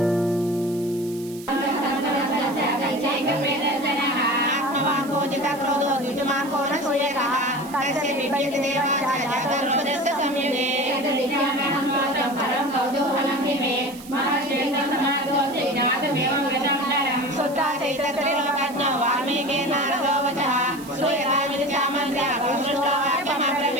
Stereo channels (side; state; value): right; noise; hiss, 18 dB below the sound